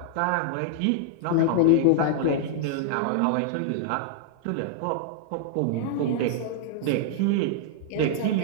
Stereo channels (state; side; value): different; both; correlation -0.01